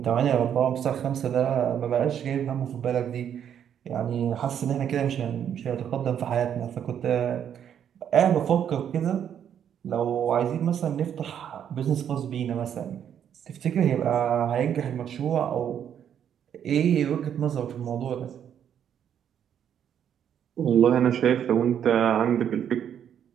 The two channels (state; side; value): quieter; left; 9.1 dB